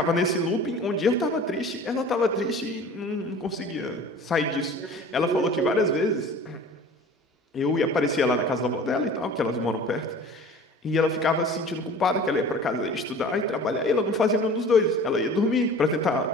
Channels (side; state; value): both; normal; correlation 0.43